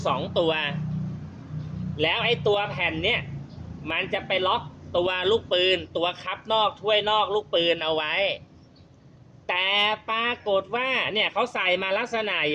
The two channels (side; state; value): both; identical; correlation 1.00